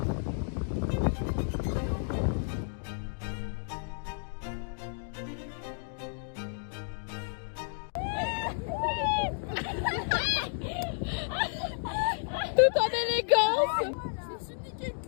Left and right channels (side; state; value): right; silent; digital silence